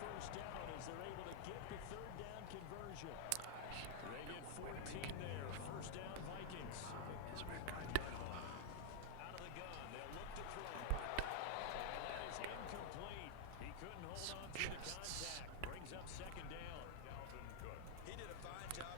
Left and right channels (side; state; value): both; different; correlation 0.00